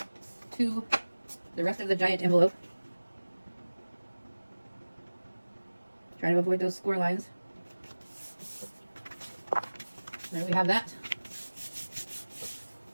to the rest of the giant envelope. Trying to avoid those score lines. There we have that.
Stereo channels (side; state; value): both; inverted; correlation -1.00